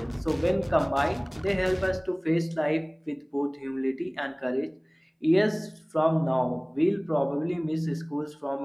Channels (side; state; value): both; identical; correlation 1.00